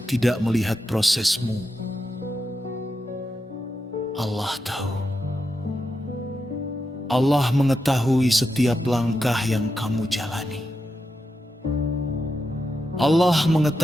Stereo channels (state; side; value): normal; both; correlation 0.87